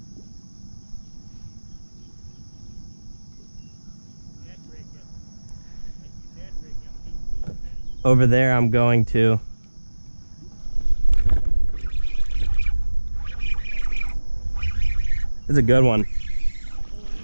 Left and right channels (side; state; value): both; inverted; correlation -1.00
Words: Over there, I'm going to. It's a good one.